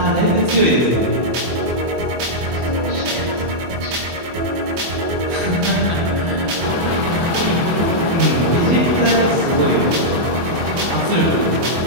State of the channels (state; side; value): late; left; 24 ms